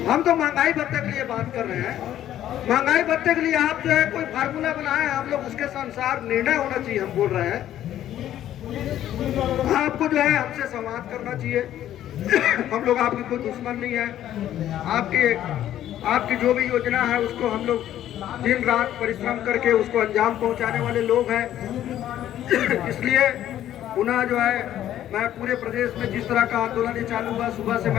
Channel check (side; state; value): right; quieter; 11.9 dB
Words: हम तो महंगाई भत्ते के लिए बात कर रहे हैं। महंगाई भत्ते के लिए आप जो है कोई फार्मूला बनाए, हम लोग उसके अनुसार निर्णय होना चाहिए। हम बोल रहे हैं आपको जो है हमसे संवाद करना चाहिए। हम लोग आपके कोई दुश्मन नहीं है। आपकी जो भी योजना है उसको हम लोग दिन रात परिश्रम करके उसको अंजाम पहुंचाने वाले लोग हैं। इसलिए पुनः जो है मैं पूरे प्रदेश में जिस तरह का आंदोलन चालू हुआ, सुबह से